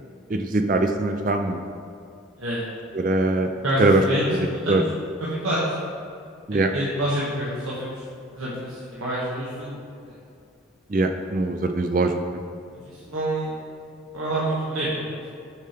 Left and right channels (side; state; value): both; normal; correlation 0.48